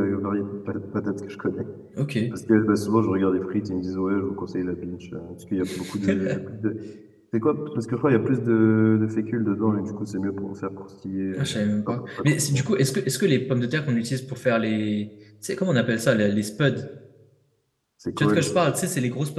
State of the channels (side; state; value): both; identical; correlation 1.00